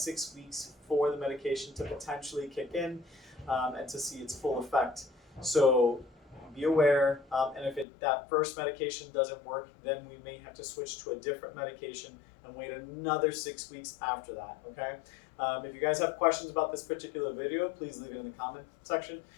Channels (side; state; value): right; drops out; at 7.9 s